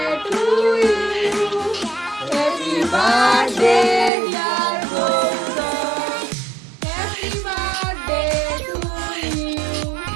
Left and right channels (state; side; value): drops out; left; at 4.1 s